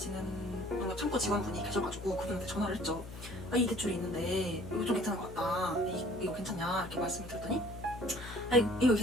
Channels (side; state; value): left; noise; hum, 12 dB below the sound